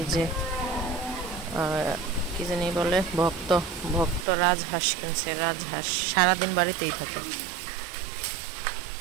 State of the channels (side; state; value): left; drops out; at 4.2 s